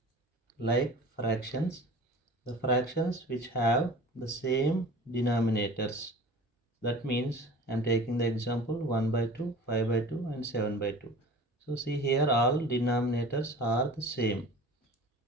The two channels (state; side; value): normal; both; correlation 0.40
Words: Like fractions, the fractions which have the same denominators. That means I am taking the example 1 by 2, 5 by 2 and 7 by 2. So see here all denominators are the same